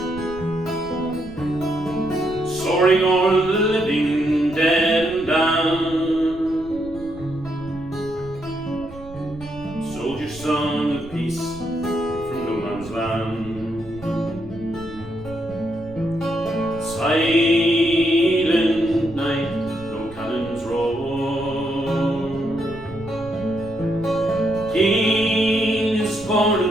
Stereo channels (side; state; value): right; noise; rumble, 18 dB below the sound